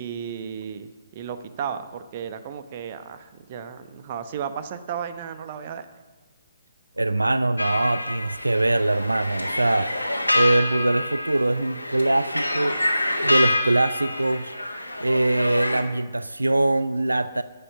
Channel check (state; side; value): inverted; both; correlation -0.94